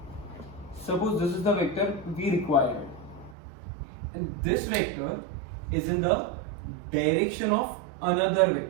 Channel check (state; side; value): drops out; left; at 3.4 s